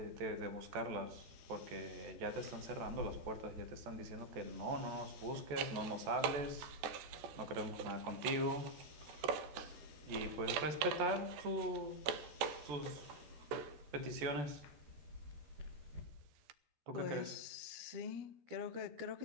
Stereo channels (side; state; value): left; late; 14 ms